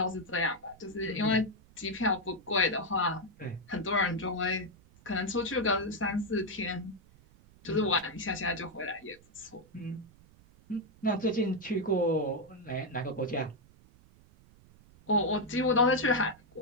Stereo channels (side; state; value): right; noise; rumble, 26 dB below the sound